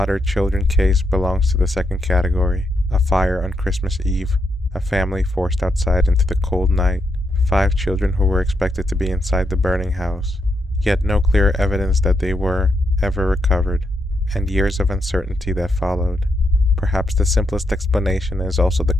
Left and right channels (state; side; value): normal; both; correlation 0.81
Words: Children case belongs to the second category: a fire on Christmas Eve, a family forced outside into the cold night, 5 children who were expected to be inside the burning house, yet no clear evidence that they were ever recovered, and years of uncertainty that followed. Perhaps the simplest explanation is also the